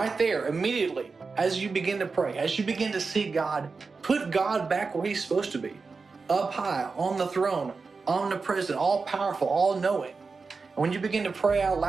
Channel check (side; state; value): left; quieter; 4.5 dB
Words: there, immediately, as you begin to pray, as you begin to seek God, put God back where He's supposed to be, up high, on the throne, omnipresent, all-powerful, all-knowing. And when you begin to pray out